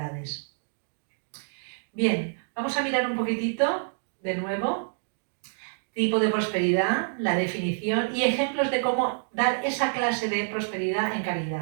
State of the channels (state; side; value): silent; left; digital silence